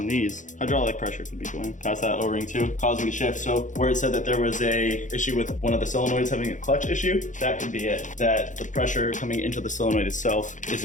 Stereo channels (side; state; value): right; late; 0.36 ms